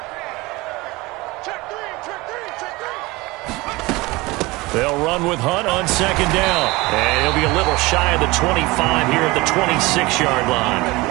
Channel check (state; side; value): quieter; left; 22.1 dB